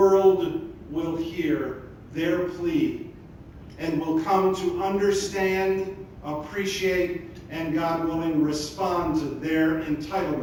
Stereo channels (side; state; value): both; identical; correlation 1.00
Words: will hear their plea and will come to understand, appreciate, and God willing, respond to their